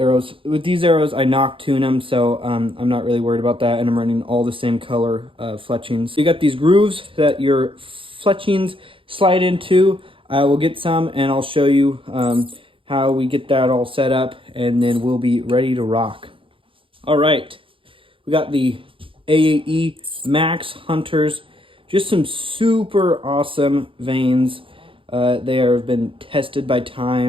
With these arrows, I knock tune them, so I'm not really worried about that, and I'm running all the same color fletchings. You got these grooves that your fletchings slide into. I will get some and I'll show you how we get that all set up, and then we'll be ready to rock. All right, we got the AE Max Hunters, just some super awesome veins. They have been tested by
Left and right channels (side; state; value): left; late; 0.25 ms